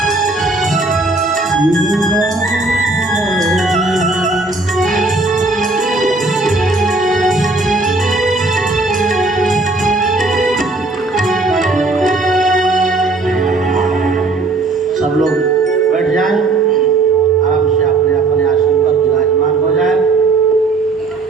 बैठ जाएं, आराम से अपने अपने आसन पर विराजमान हो जाएं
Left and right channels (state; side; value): quieter; left; 3.4 dB